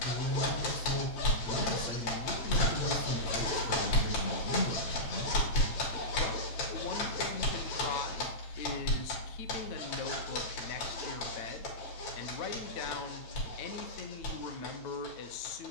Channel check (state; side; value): late; right; 9.0 ms